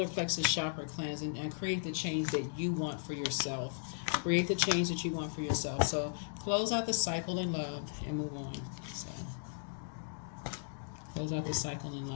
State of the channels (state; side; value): silent; right; digital silence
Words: plexus chakra cleanse and create the change that you want for yourself. Create the change that you want for yourself. So close out the cycle in love and move on. So close out the cycle in